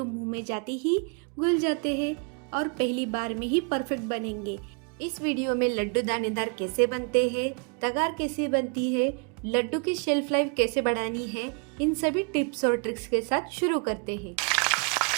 मुंह में जाते ही घुल जाते हैं और पहली बार में ही परफेक्ट बनेंगे। इस वीडियो में लड्डू दानेदार कैसे बनते हैं, तगार कैसे बनती है, लड्डू की शेल्फ लाइफ कैसे बढ़ानी है, इन सभी टिप्स और ट्रिक्स के साथ शुरू करते हैं।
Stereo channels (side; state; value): left; quieter; 35.5 dB